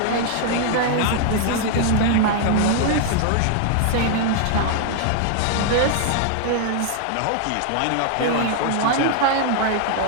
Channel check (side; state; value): both; different; correlation 0.00